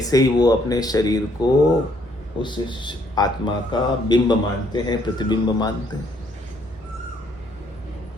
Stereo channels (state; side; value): normal; both; correlation 0.68